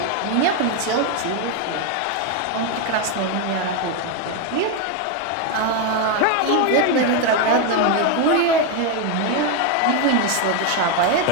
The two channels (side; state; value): both; different; correlation 0.02